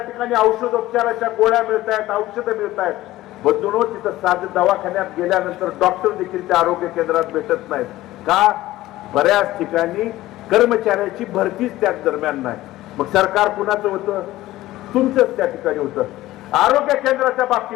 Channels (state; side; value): quieter; right; 16.3 dB